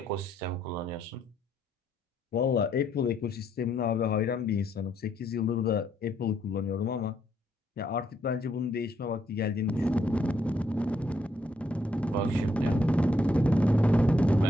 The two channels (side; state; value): both; normal; correlation 0.73